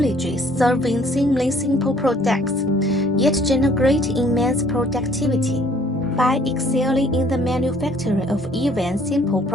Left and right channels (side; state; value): both; normal; correlation 0.59